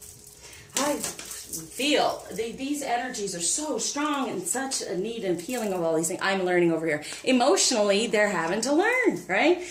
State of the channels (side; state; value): both; identical; correlation 1.00